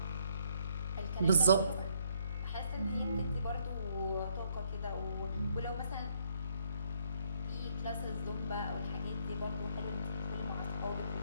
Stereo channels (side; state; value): both; inverted; correlation -0.69